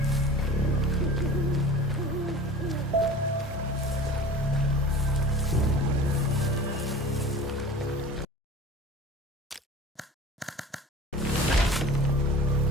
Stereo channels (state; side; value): normal; both; correlation 0.40